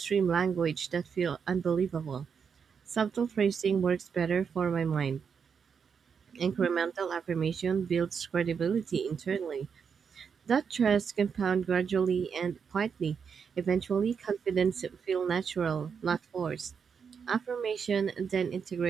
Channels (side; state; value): left; quieter; 6.5 dB